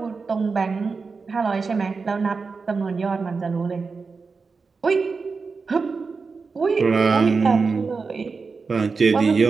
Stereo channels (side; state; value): left; quieter; 4.6 dB